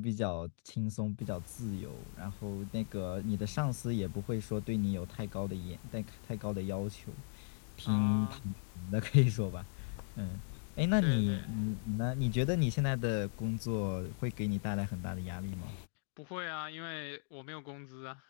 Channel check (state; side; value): silent; right; digital silence